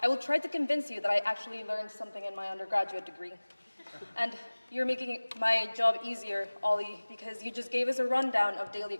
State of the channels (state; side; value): inverted; both; correlation -1.00